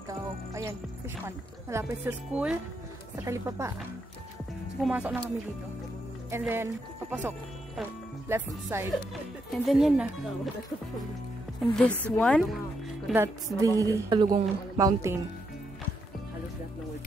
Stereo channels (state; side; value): normal; both; correlation 0.79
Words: daw. Ayan, fish pond. Malapit sa school, sa Talipapa. Pumasok na kami dito. And then, papasok. Left side. And then yan na. And this one, that's the Kalugong Mountain.